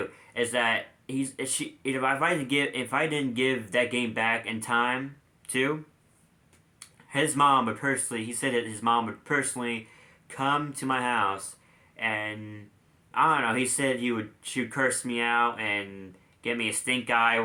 is that if I didn't give that game back in time too, his mom would personally he said that his mom would personally come to my house and I don't know, he said she would curse me out and get me a stink eye or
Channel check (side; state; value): both; identical; correlation 1.00